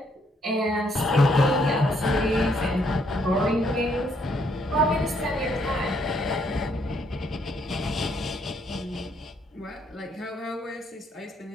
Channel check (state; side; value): normal; both; correlation 0.71